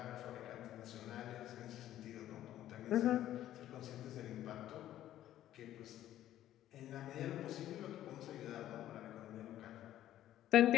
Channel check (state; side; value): quieter; right; 12.7 dB